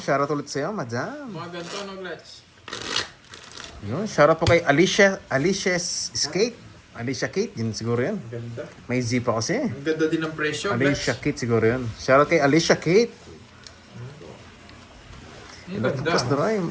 ulit sa'yo, madam. Mga ganito, no, Glutch? Yun, shoutout po kay Alicia's Skate. Alicia Kate, yun siguro yun. Ang ganda. May Z pa kasi. Ang ganda din ng presyo, Alicia Glutch. Kate siguro yun. Shoutout kay Alicia Kate. Ang Hello, ganda. Pupas Doray.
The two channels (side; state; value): both; identical; correlation 1.00